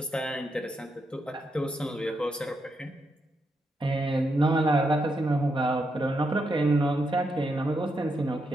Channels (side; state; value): both; normal; correlation 0.82